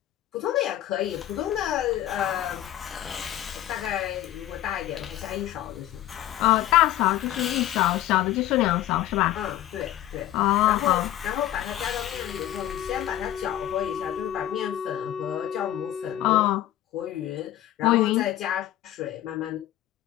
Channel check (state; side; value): quieter; right; 13.2 dB